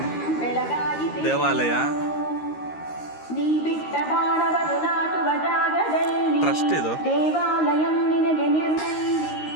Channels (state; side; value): late; right; 13 ms